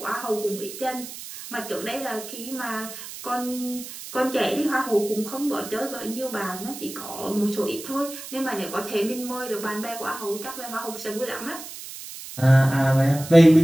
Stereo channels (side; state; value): right; noise; hiss, 12 dB below the sound